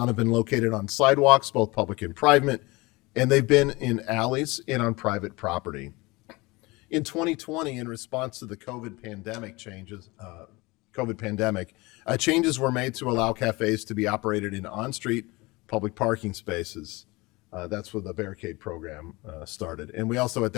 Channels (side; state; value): right; quieter; 23.5 dB